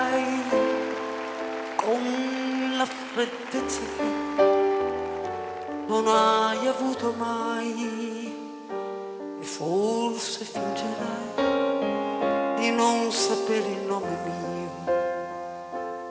con la freddezza che non hai avuto mai, e forse fingerai di non sapere il nome mio.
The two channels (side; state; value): both; identical; correlation 1.00